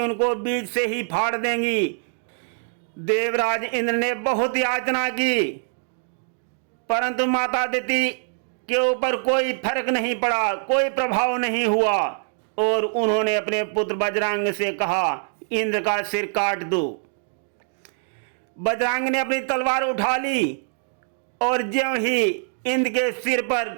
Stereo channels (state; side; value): silent; left; 63 dB below the other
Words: उनको बीच से ही फाड़ देंगी। देवराज इंद्र ने बहुत याचना की, परंतु माता दिति के ऊपर कोई फर्क नहीं पड़ा, कोई प्रभाव नहीं हुआ, और उन्होंने अपने पुत्र बजरंग से कहा, इंद्र का सिर काट दो। बजरंग ने अपनी तलवार उठा ली, और ज्यों ही इंद्र के सिर पर